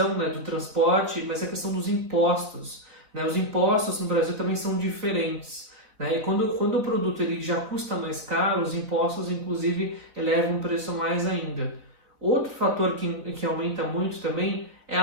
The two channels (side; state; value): left; late; 4.1 ms